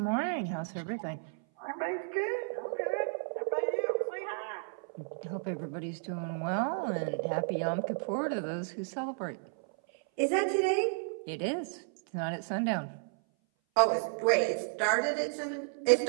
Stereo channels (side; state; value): left; silent; 56 dB below the other